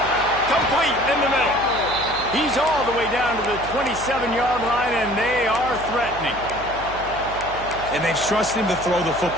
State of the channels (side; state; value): right; noise; hum, 14 dB below the sound